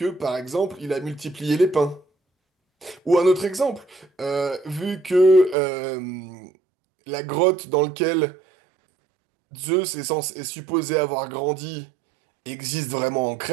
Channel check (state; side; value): drops out; left; at 5.6 s